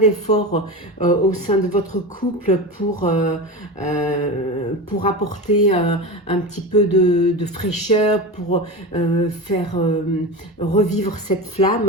au sein de votre couple pour apporter un petit peu de fraîcheur, pour faire revivre cette flamme,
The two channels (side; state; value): both; normal; correlation 0.24